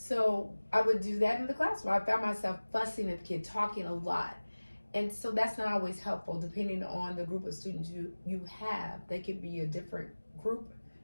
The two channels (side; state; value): both; inverted; correlation -1.00